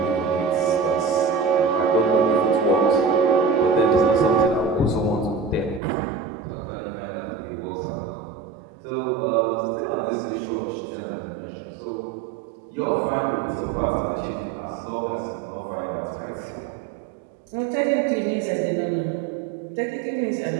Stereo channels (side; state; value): left; drops out; at 5.8 s